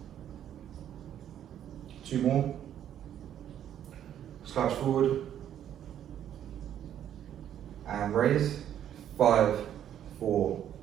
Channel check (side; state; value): left; quieter; 10.3 dB